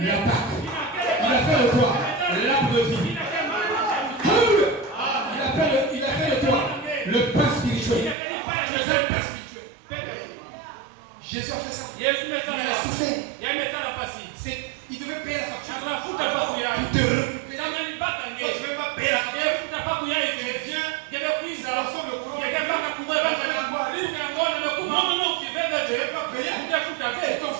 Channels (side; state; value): left; drops out; at 8.2 s